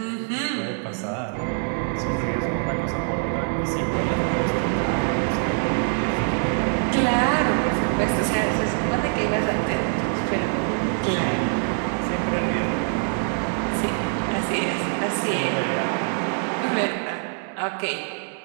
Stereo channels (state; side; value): silent; left; 56 dB below the other